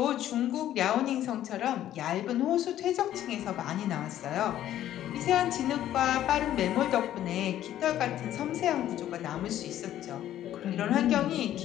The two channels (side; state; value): right; quieter; 12.2 dB